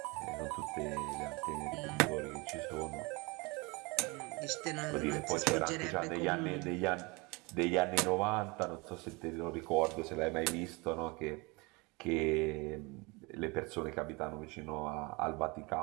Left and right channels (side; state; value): left; quieter; 26.8 dB